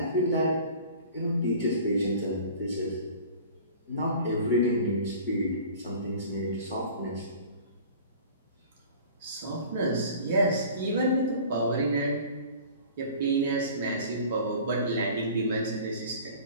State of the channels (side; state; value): both; inverted; correlation -0.44